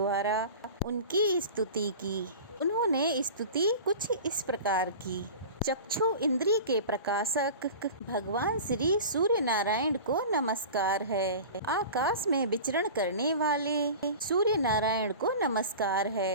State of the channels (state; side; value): inverted; both; correlation -0.36